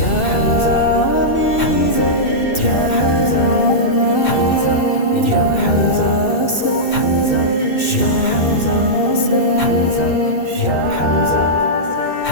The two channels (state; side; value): late; right; 2.6 ms